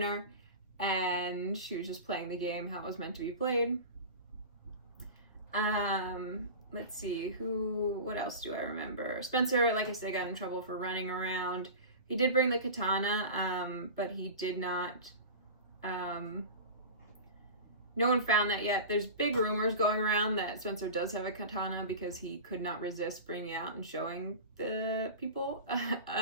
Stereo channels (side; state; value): both; inverted; correlation -0.31